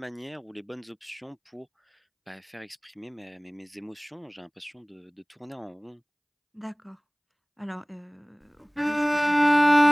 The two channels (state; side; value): identical; both; correlation 1.00